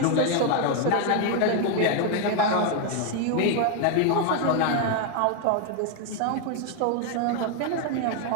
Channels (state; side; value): different; both; correlation 0.01